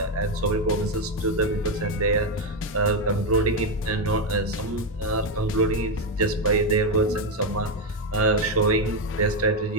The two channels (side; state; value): both; normal; correlation 0.06